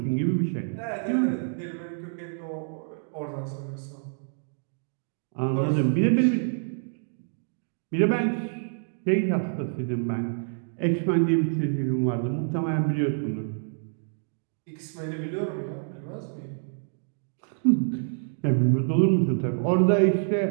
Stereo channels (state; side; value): silent; left; digital silence